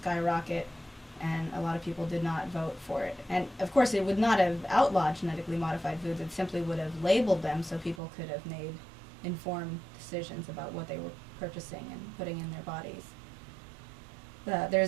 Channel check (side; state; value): left; drops out; at 8.0 s